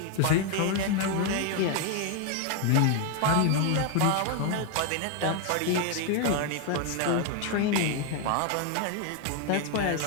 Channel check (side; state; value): both; different; correlation 0.01